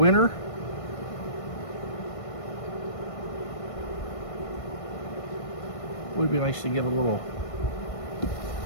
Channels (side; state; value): right; late; 1.5 ms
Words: Would be nice to get a little,